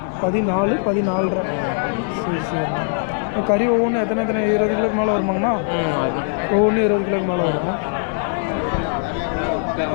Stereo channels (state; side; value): silent; right; 65 dB below the other